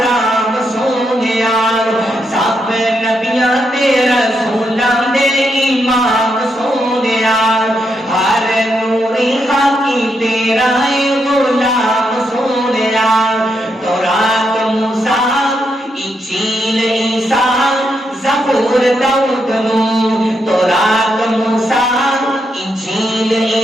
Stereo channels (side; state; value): both; normal; correlation 0.81